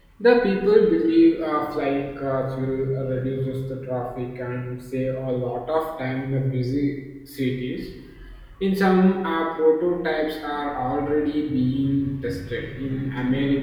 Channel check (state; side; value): identical; both; correlation 1.00